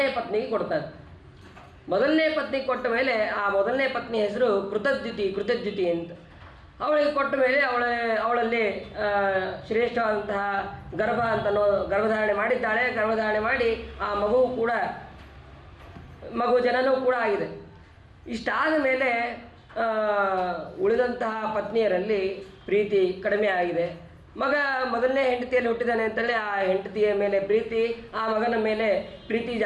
ಪತ್ನಿಗೆ ಕೊಡ್ತಾರೆ. ಮೊದಲನೇ ಪತ್ನಿಗೆ ಕೊಟ್ಟ ಮೇಲೆ ಆ ಮೊದಲನೇ ಪತ್ನಿ ಹೆಸರು ಕೃತದ್ಯುತಿ ಅಂತ. ಅವಳಿಗೆ ಕೊಟ್ಟ ಮೇಲೆ ಅವಳಲ್ಲಿ ಶ್ರೇಷ್ಠವಾದಂತಹ ಗರ್ಭಧಾರಣೆ ಮಾಡಿದ್ದಾಳೆ. ಗರ್ಭಧಾರಣೆ ಮಾಡಿ ಆ ಮಗು ಜನನೂ ಕೂಡ ಆಗಿದೆ. ಇಷ್ಟಾದ ಮೇಲೆ ಉಳಿದಂತಹ ಪತ್ನಿಯರಲ್ಲಿ ಪ್ರೀತಿ ಕಡಿಮೆ ಆಗಿದೆ. ಮಗ ಮೊದಲನೇ ಹೆಂಡತಿಯಲ್ಲಿ ಹುಟ್ಟಿದ್ದಾನೆ ಅಂತೇಳಿ ಆ ಹೆಂಡತಿಯ ಮೇಲೆ ಪ್ರೀತಿ, ಆ ಮಗನ ಮೇಲೆ ಪ್ರೀತಿ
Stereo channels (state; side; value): identical; both; correlation 1.00